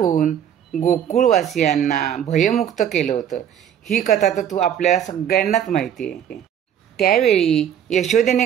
गोकुळवासियांना भयमुक्त केलं होतं. ही कथा तर आपल्याला सगळ्यांनाच माहिती आहे. त्यावेळी यशोदेने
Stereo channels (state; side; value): quieter; left; 9.4 dB